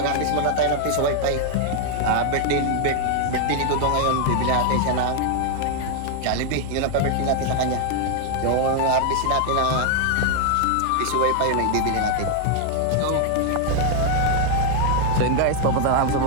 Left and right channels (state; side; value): different; both; correlation 0.00